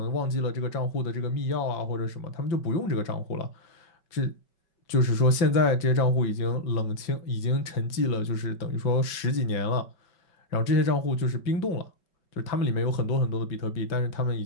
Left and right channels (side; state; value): right; late; 5.3 ms